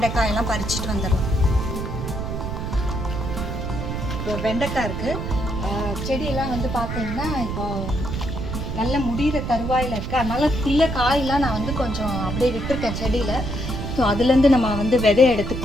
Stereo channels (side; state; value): right; noise; rumble, 4 dB below the sound